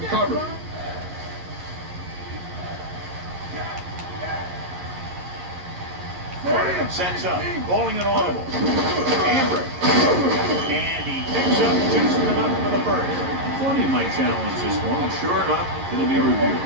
covered. Sets up, bowling an audible. Amber. And he picks up just enough for the first. Thought he might challenge this one, and sure enough, it'll be reviewed.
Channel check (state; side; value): late; left; 11 ms